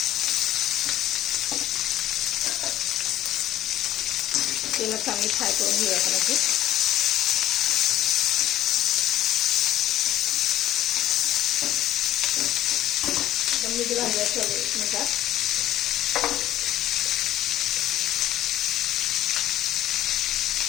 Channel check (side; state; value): right; quieter; 13.4 dB